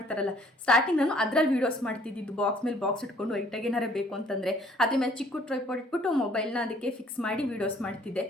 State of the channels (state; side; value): normal; both; correlation 0.59